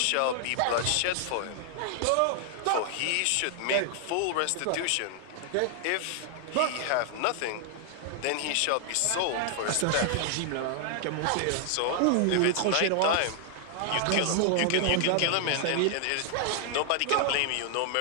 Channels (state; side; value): different; both; correlation 0.00